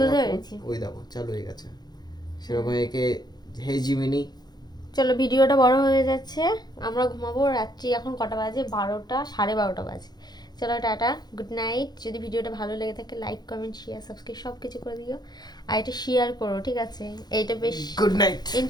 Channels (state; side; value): late; right; 0.20 ms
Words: আমার phone, পেরেছি। ওই দেখো চালু হয়ে গেছে। সেরকম একে হে জিমিনি। চলো, ভিডিওটা বড় হয়ে যাচ্ছে, আমরা ঘুমাবো। রাত্রি এখন কটা বাজে? 12টা, 12:30 বাজে। চলো, টাটা, গুড নাইট। যদি ভিডিওটা ভালো লেগে থাকে, লাইক কমেন্ট শেয়ার সাবস্ক্রাইব সব কিছু করে দিও। আর এটা শেয়ার করো, ঠিক আছে? এইটা বেশ গুড নাইট।